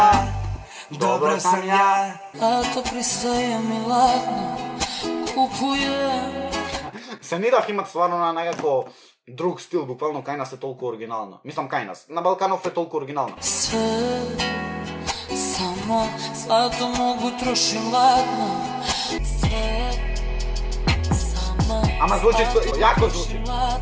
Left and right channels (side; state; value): both; identical; correlation 1.00